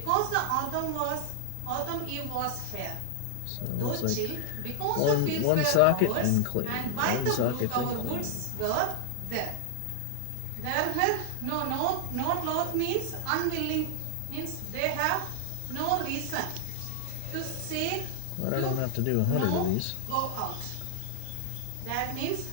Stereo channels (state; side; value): different; both; correlation 0.00